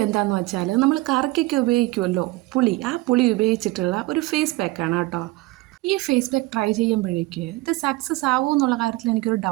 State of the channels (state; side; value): quieter; left; 20.7 dB